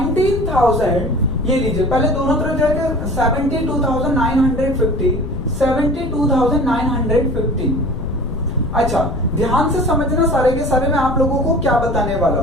ये लीजिए पहले दोनों तरफ जाकर 72,950, 72,950। अच्छा ध्यान से समझना सारे के सारे, मैं आप लोगों को क्या बताने वाला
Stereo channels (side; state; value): left; noise; rumble, 6 dB below the sound